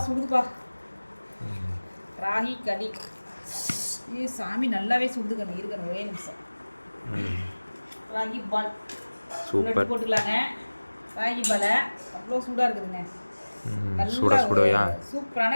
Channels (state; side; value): inverted; both; correlation -1.00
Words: சுடுதுப்பா. ராகி களி. சாமி நல்லாவே சுடுதுக்கணும். இருக்கணும் ஒரே நிமிஷம். ராகி பால் சூப்பர் போட்டுக்கலாங்க. ராகி பாலை அவ்வளோ சூடாக இருக்குதுங்க. சுடவையா